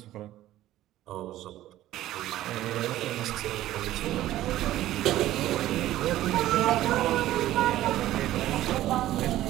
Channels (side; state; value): left; quieter; 14.3 dB